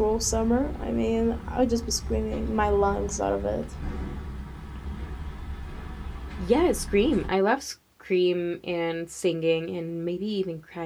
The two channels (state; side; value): identical; both; correlation 1.00